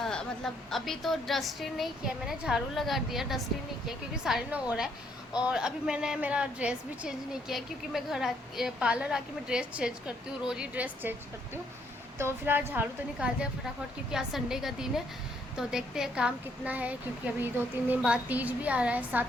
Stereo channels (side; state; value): both; normal; correlation 0.70